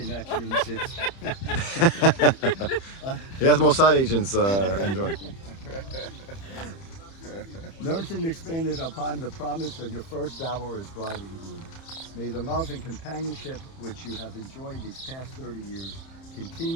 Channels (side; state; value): right; late; 30 ms